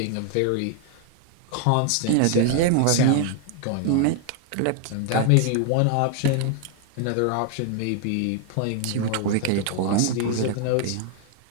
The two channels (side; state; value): both; different; correlation 0.00